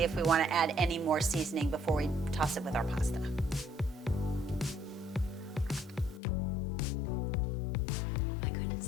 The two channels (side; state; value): right; drops out; at 6.2 s